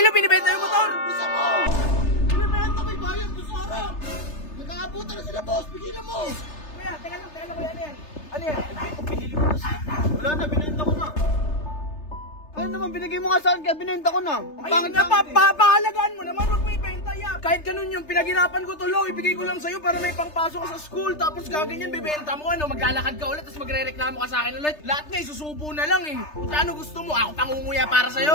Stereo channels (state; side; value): late; right; 3.3 ms